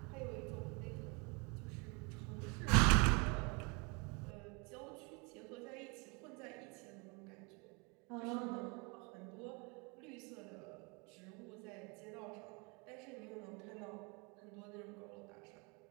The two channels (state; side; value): quieter; left; 30.8 dB